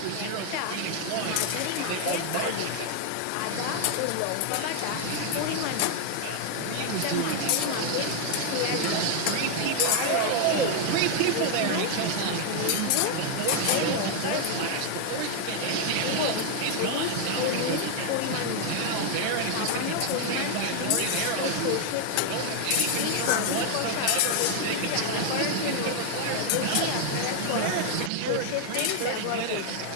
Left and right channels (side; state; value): both; different; correlation 0.00